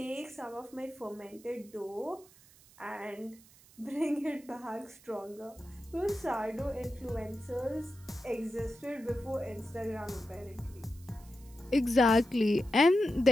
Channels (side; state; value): right; noise; hiss, 25 dB below the sound